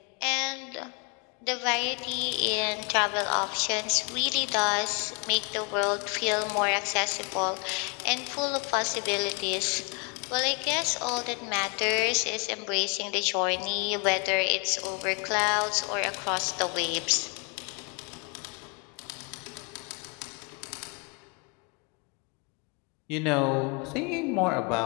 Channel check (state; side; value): quieter; right; 34.1 dB